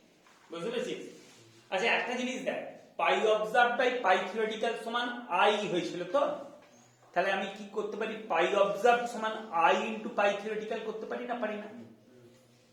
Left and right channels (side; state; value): both; identical; correlation 1.00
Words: বুঝতে পেরেছিস? আচ্ছা একটা জিনিস দেখ, পাই অবজার্ভ বাই পাই থিওরিটিক্যাল সমান i হয়েছিল তো, তাহলে আমি কি করতে পারি? পাই অবজার্ভ সমান i ইনটু পাই থিওরিটিক্যাল করতে পারি না, পারি না?